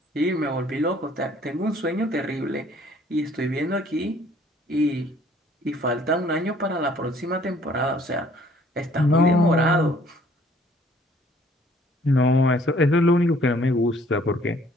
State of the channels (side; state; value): both; normal; correlation 0.59